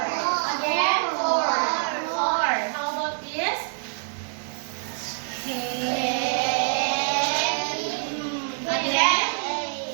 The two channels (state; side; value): silent; left; digital silence